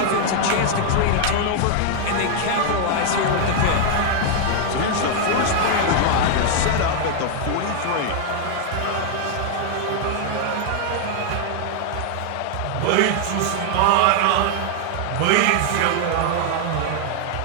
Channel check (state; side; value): different; both; correlation 0.00